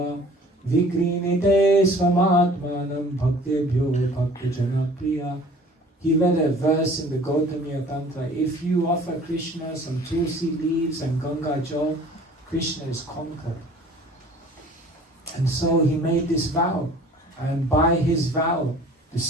vikrinite swamatmanam bhaktebhyo bhaktajana priya. He read a verse in the Gautamiya Tantra. If you offer Krishna some tulsi leaves and Ganga Jal, Krishna is conquered. And so he made this vow. And by his vow, the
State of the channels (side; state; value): both; normal; correlation 0.49